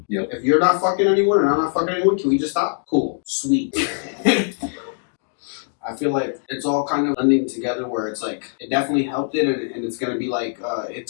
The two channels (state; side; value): silent; right; digital silence